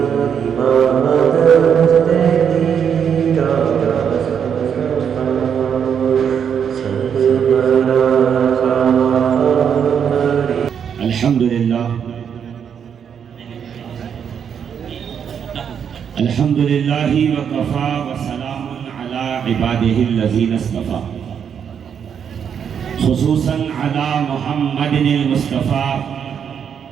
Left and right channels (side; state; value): left; quieter; 7.8 dB